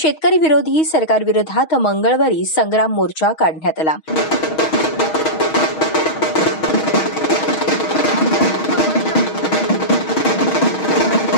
विरोधी सरकारविरोधात मंगळवारी संग्राम मोर्चा काढण्यात आला.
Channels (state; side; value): late; right; 6.3 ms